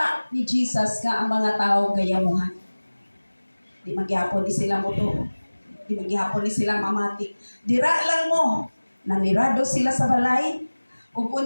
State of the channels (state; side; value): inverted; both; correlation -1.00